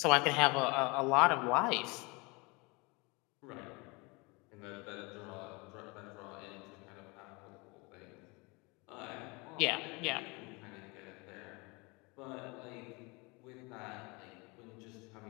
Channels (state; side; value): quieter; right; 27.2 dB